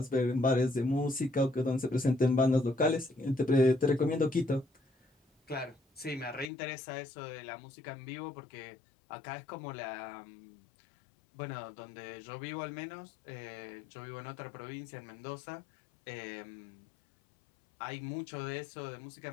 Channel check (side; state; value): right; drops out; at 6.5 s